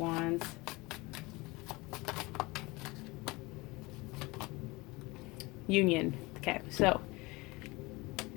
Union. Okay, so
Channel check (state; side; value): quieter; right; 23.5 dB